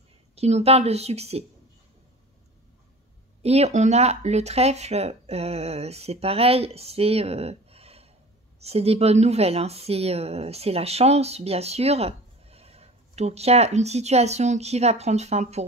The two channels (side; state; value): both; normal; correlation 0.40